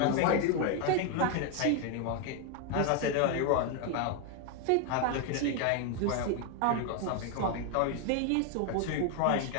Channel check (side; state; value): both; different; correlation 0.01